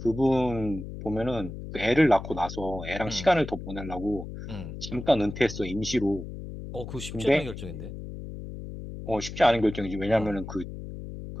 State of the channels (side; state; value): left; noise; hum, 10 dB below the sound